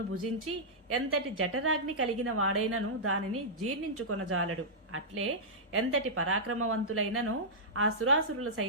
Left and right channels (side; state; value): both; normal; correlation -0.12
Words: భుజించి ఎంతటి జఠరాగ్ని కలిగిన వాడైనను దానిని జీర్ణించుకొనజాలడు. అట్లే ఎంతటి పరాక్రమవంతులైనను ఆ సురాసురుల